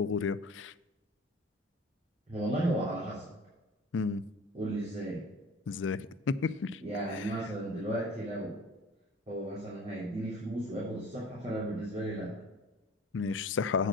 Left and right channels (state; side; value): normal; both; correlation 0.43